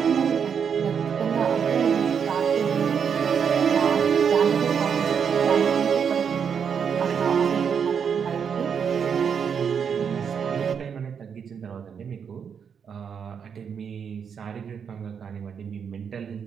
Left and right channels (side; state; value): left; quieter; 7.0 dB